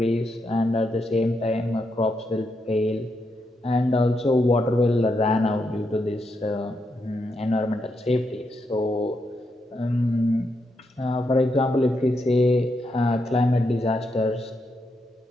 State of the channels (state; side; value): normal; both; correlation 0.82